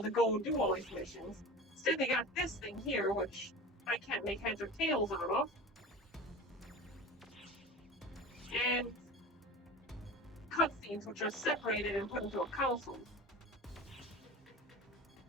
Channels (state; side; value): normal; both; correlation 0.34